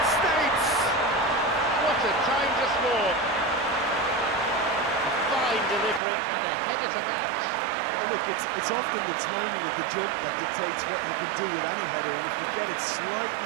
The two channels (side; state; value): left; drops out; at 6.0 s